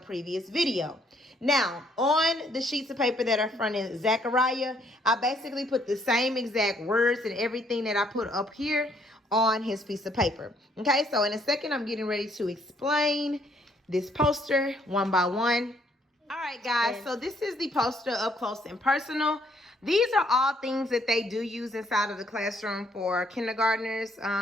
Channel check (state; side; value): normal; both; correlation 0.67